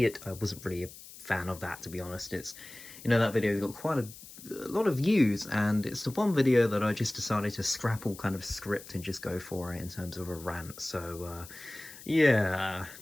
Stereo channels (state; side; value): noise; left; hiss, 17 dB below the sound